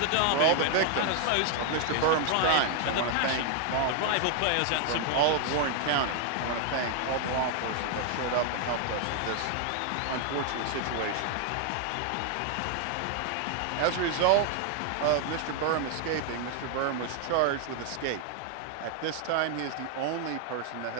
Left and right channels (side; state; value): both; different; correlation 0.00